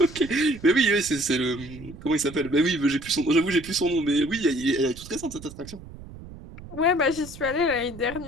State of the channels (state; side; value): noise; right; rumble, 16 dB below the sound